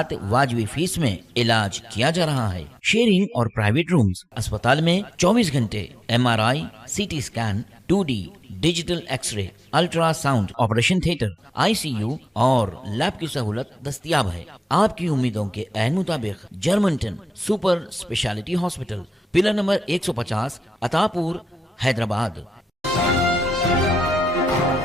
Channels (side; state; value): both; normal; correlation 0.91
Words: वाजबी फीस में इलाज किया जा रहा है। शेयरिंग और प्राइवेट रूम्स, अस्पताल में 24 घंटे MRI, CT scan, 2D digital x ray, ultrasound, operation theatre, ICU और लैब की सहूलत दस्तयाब है। आपकी उम्मीदों के ऐन मुताबिक Germanten super speciality hospital, pillar number 150, Attapur, Hyderabad.